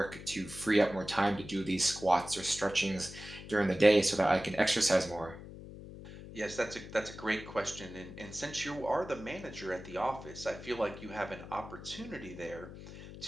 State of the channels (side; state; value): left; noise; hum, 13 dB below the sound